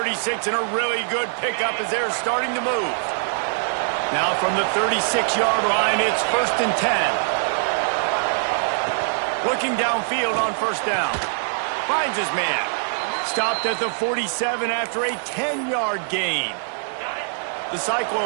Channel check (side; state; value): left; silent; digital silence